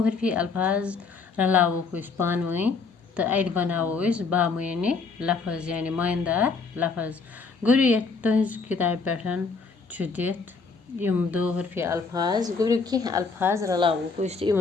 हरफी अल्फाज रलावो को इस पान वहीं तो अद बनावो इस बामने लफज यानी मायनदार लफज गुबरियो तुहज किताब पैठन दित यम दो हरफी अल्फाज गुबरियो की अल्फाज रलावो को इस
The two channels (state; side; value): quieter; right; 4.6 dB